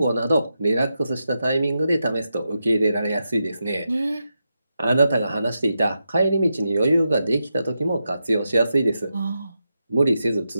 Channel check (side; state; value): both; inverted; correlation -0.87